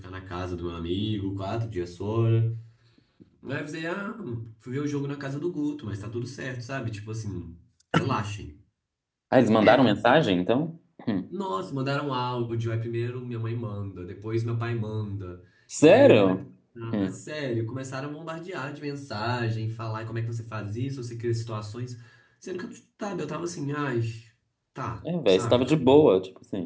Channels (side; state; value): both; identical; correlation 1.00